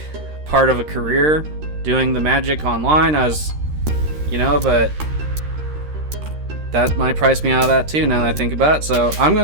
part of a career doing the Magic online. But that might price me out of that too, now that I think about it. So I'm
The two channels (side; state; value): left; late; 13 ms